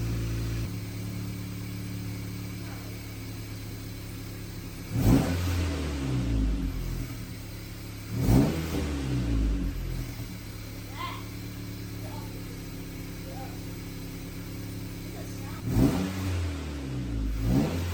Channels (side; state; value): both; identical; correlation 1.00